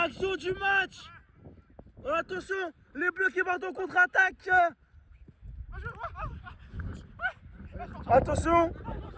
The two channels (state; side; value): identical; both; correlation 1.00